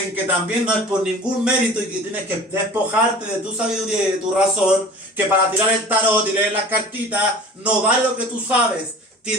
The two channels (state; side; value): normal; both; correlation 0.41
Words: que también no es por ningún mérito y que tienes que despojarte de tu sabiduría y de tu razón, que para tirar el tarot y leer las cartitas no vale lo que tú sabes.